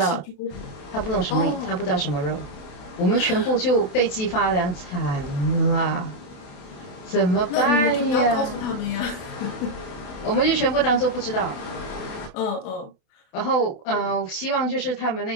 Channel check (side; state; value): right; late; 28 ms